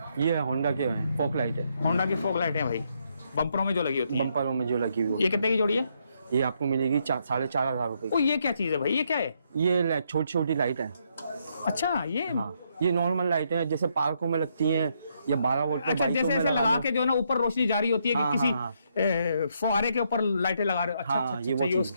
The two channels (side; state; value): both; inverted; correlation -0.75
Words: ये होंडा के है, फॉग लाइट है। होंडा की फोग लाइट है भाई, बम्परों में जो लगी होती है। बम्परों में जो लगी हुई ये कितने की जोड़ी है? ये आपको मिलेगी 4500 रुपए ओ, ये क्या चीज है भाई, ये क्या है? की। ये छोटी छोटी लाइट है। अच्छा, ये हाँ, ये नॉर्मल लाइट है, जैसे पार्कों में लगती हैं या 12 वोल्ट पे अच्छा, बाइकों जैसे में ऐसे लगा लगा दो। के जो है ना ऊपर रोशनी जारी होती है कि हाँ, किसी हाँ, फुहारे के ऊपर लाइटें लगा रहे हो। अच्छा हाँ, अच्छा ये अच्छा, वो ये चीज़